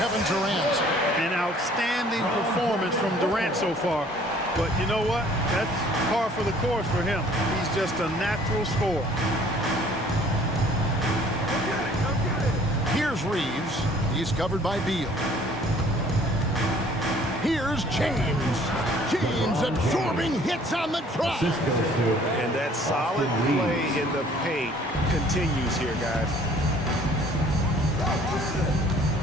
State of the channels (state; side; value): normal; both; correlation 0.55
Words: Durant. An outstanding performance from Durant so far. But you know what? That's par for the course for him. He's just a natural scorer. Here's Reeves. He's covered by Beal. Here's James. James absorbing hits on the drive. And that solid play in the paint continues here, guys.